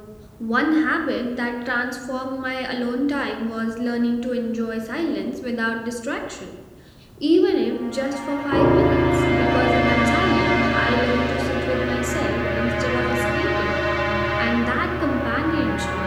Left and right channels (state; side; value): identical; both; correlation 1.00